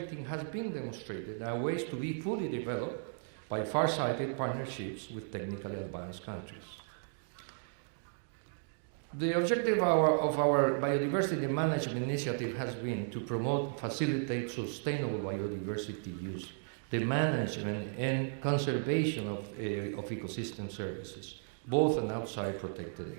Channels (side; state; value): left; silent; digital silence